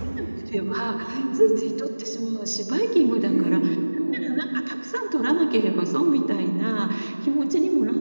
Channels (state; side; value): inverted; both; correlation -1.00